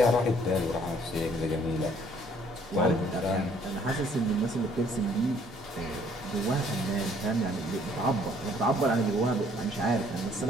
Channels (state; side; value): normal; both; correlation 0.62